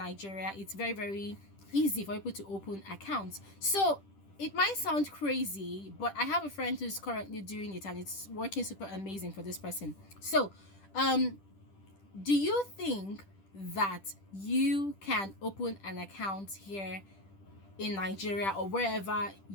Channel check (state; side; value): late; right; 10 ms